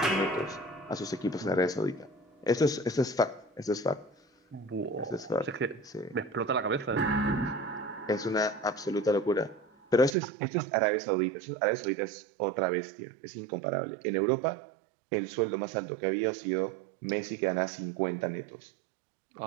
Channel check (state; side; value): drops out; left; at 10.2 s